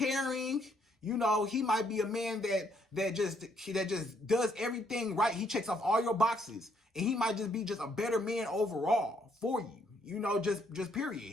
He might be a man that just does everything right. He checks off all your boxes, and he might just be just a better man overall for you. Just period.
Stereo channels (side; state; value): both; normal; correlation 0.70